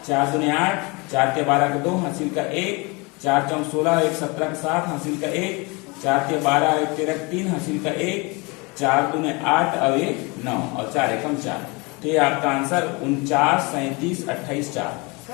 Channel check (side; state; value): right; quieter; 27.7 dB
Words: 4 दूनी 8, 4 ते 12 का 2 हासिल का 1, 4 चौक 16, 1 17 का 7 हासिल का 1, 4 ते 12, 1 13 का 3 हासिल का 1, 4 दूने 8 और 1 9 और 4 एकम 4, तो ये आपका आंसर 49 37 28 4,